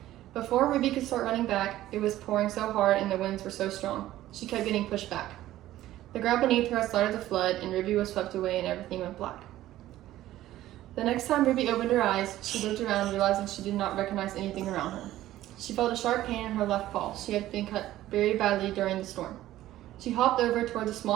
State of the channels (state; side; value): quieter; left; 14.5 dB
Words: Before Ruby could start running back, it was pouring so hard and the winds were so strong, she kept getting pushed back. The ground beneath her had started to flood and Ruby was swept away and everything went black. The next time Ruby opened her eyes, she looked around, realizing she did not recognize anything around her. She felt a sharp pain in her left paw. She had been cut very badly during the storm. She hopped over towards a